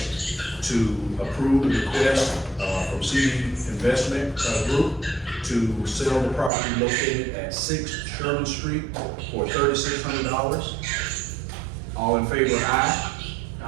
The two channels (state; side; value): drops out; left; at 6.5 s